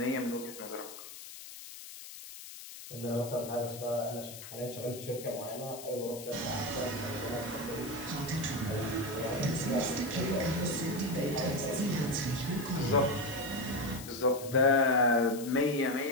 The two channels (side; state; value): left; noise; hiss, 13 dB below the sound